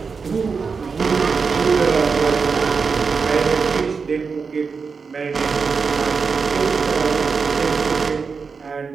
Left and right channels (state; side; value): quieter; left; 5.2 dB